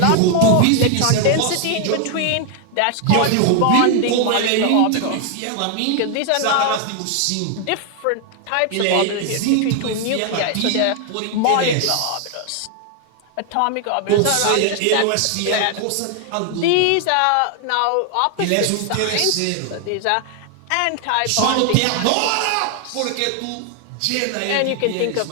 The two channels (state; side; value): different; both; correlation 0.00